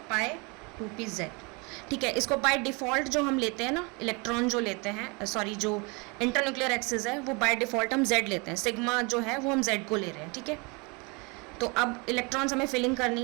पाई 2pz, ठीक है। इसको बाय डिफ़ॉल्ट जो हम लेते हैं ना, इलेक्ट्रॉन जो लेते हैं, जो इंटरन्यूक्लियर एक्सिस है वो बाय डिफ़ॉल्ट हम z लेते हैं, सिग्मा जो है वो हम z को ले रहे हैं, ठीक है। तो अब इलेक्ट्रॉन्स हमें फिलिंग करनी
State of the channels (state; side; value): quieter; left; 30.0 dB